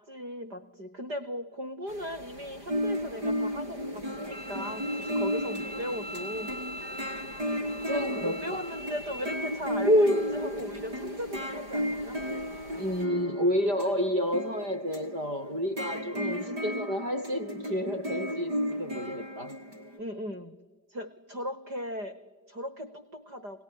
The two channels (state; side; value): late; left; 5.0 ms